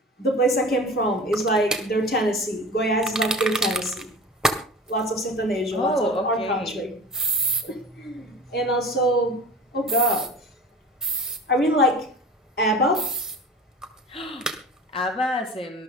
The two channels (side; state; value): both; normal; correlation 0.37